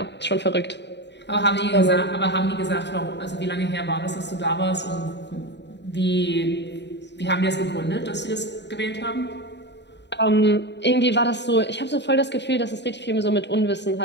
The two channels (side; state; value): right; late; 0.51 ms